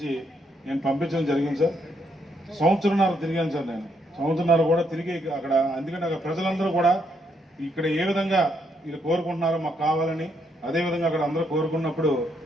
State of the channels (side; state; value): both; normal; correlation 0.75